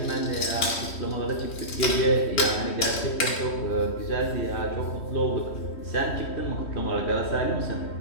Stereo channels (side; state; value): right; late; 3.1 ms